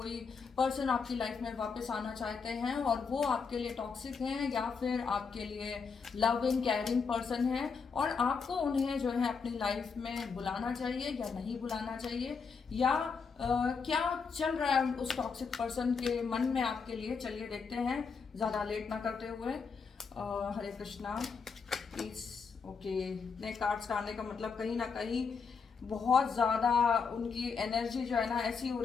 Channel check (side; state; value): right; quieter; 5.4 dB